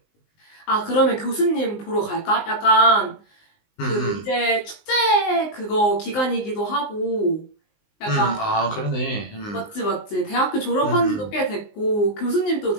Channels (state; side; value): late; right; 19 ms